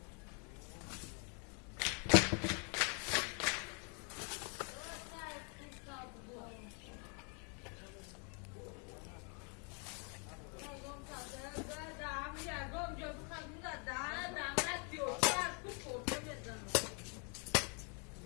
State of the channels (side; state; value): right; quieter; 37.3 dB